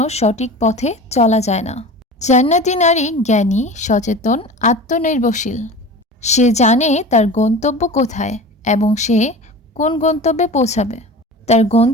সঠিক পথে চলা যায় না। জান্নাতি নারী জ্ঞানী, সচেতন, আত্মনির্ভরশীল। সে জানে তার গন্তব্য কোথায় এবং সে কোন গন্তব্যে পৌঁছাবে। তার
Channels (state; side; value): normal; both; correlation 0.35